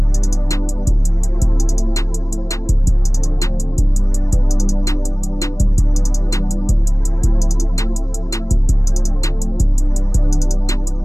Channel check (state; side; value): late; right; 0.16 ms